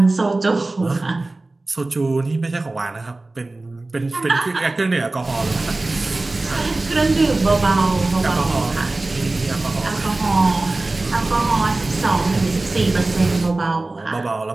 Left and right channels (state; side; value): quieter; left; 3.1 dB